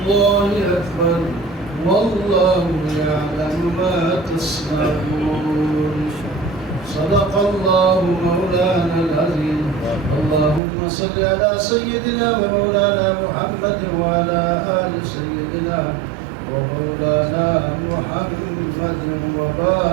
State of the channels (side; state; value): left; drops out; at 10.6 s